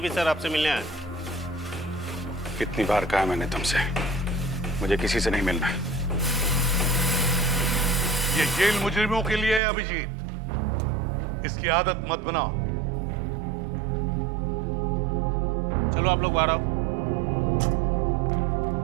सर आपसे मिलने आए। कितनी बार कहा मैंने तुमसे, मुझे किसी से नहीं मिलना है। ये जेल मुजरिमों के लिए है अभिजीत, इसकी आदत मत बनाओ। चलो आप लोग बाहर आओ।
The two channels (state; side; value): drops out; left; at 9.6 s